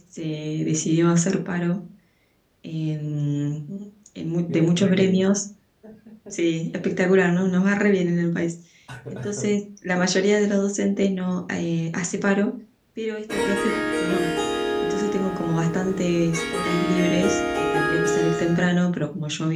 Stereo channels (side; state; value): both; identical; correlation 1.00